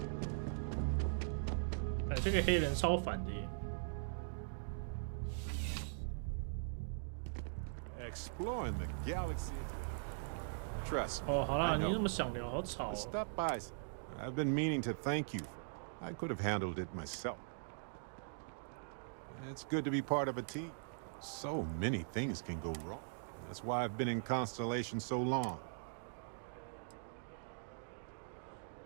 哎，这个黑人超烦的耶。Exploring the galaxy is hard work. Trust me. 哦，好啦，你那么想聊，好吵哦。 Stop by. I've been meaning to thank you. I could have handled it myself. It's good to be part of a team. So many things can go wrong. That's why I've been in Constellation so long.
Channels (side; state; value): left; silent; digital silence